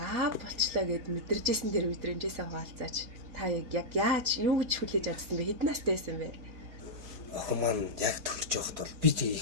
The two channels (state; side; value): late; left; 4.0 ms